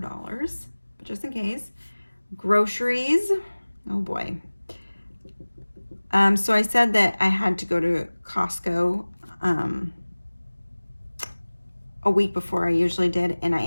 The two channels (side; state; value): both; inverted; correlation -1.00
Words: but just in case. Groceries, oh boy. So I said that I had to go to Costco a week before I usually did, and I